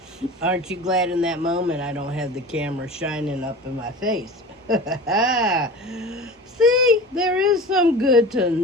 Aren't you glad in that moment I don't have the camera shining up in my face? See, there is some good to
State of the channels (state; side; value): normal; both; correlation 0.35